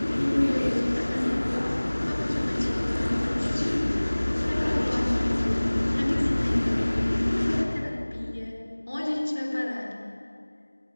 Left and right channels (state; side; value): inverted; both; correlation -1.00